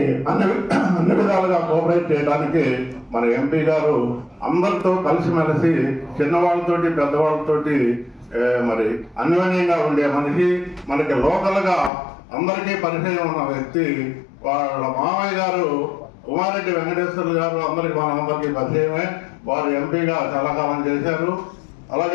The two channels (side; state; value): right; drops out; at 11.9 s